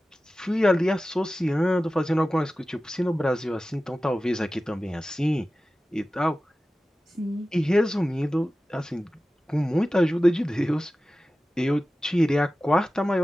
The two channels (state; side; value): normal; both; correlation 0.95